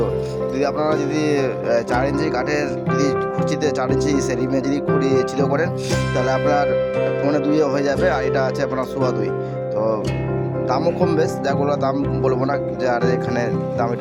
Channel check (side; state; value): both; identical; correlation 1.00